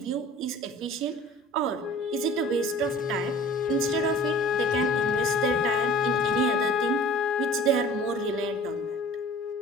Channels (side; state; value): both; normal; correlation 0.45